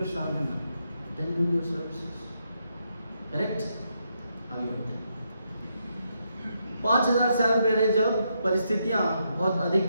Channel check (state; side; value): inverted; both; correlation -0.80